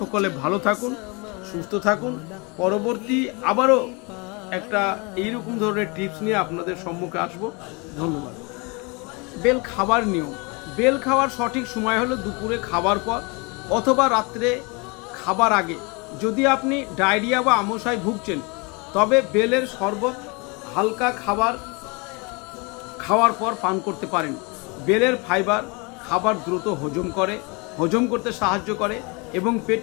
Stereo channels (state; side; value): quieter; right; 29.6 dB